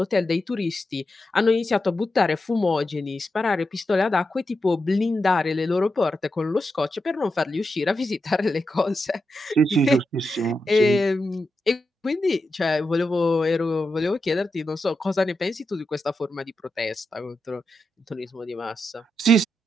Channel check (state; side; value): normal; both; correlation 0.87